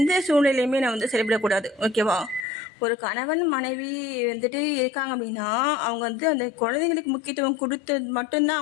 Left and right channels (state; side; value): drops out; right; at 2.5 s